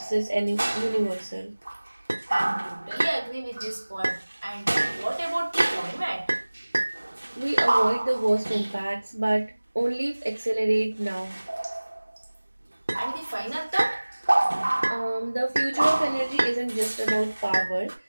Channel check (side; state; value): both; inverted; correlation -1.00